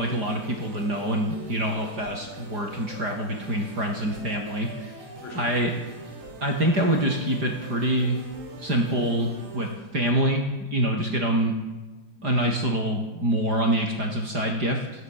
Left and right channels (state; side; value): late; left; 4.9 ms